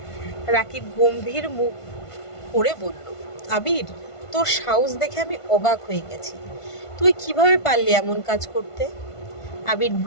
রাকিব গম্ভীর মুখ করে বলল, আবির, তোর সাহস দেখে আমি অবাক হয়ে গেছি। তুই কিভাবে পারলি এমন কাজ করতে? আবির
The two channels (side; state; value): right; late; 1.5 ms